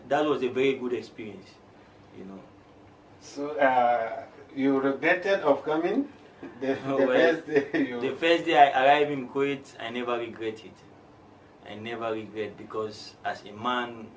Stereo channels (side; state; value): both; identical; correlation 1.00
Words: that was a very good experience, you know. So you regretted of coming? The first day I arrived in Kuwait, I never regret it. I never regret, because as a man,